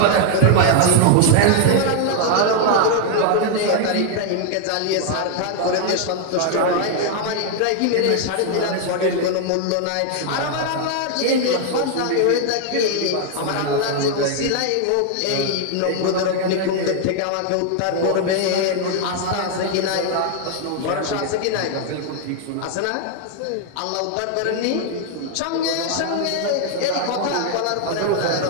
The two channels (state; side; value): different; both; correlation 0.00